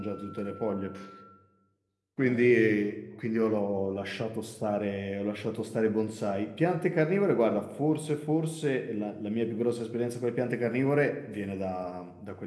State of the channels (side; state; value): both; identical; correlation 1.00